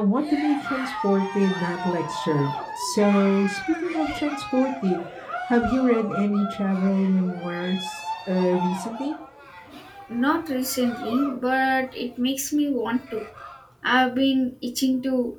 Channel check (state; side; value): identical; both; correlation 1.00